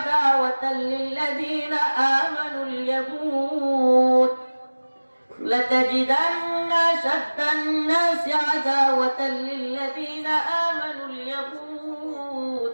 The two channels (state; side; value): inverted; both; correlation -1.00